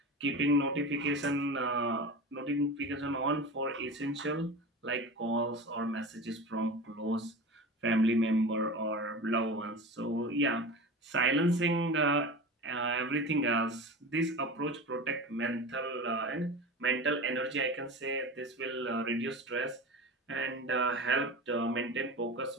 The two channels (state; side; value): normal; both; correlation 0.30